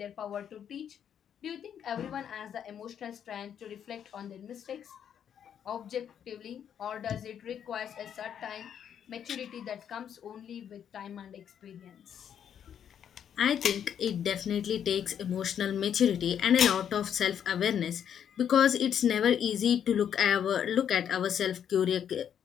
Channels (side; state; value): right; quieter; 8.8 dB